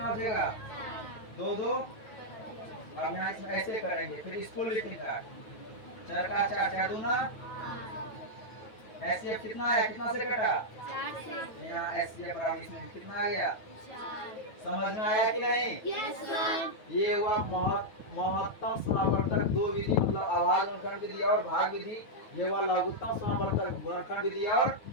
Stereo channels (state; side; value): late; right; 9.2 ms